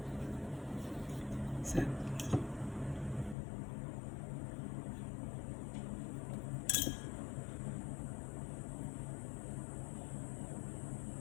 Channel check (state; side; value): drops out; right; at 3.4 s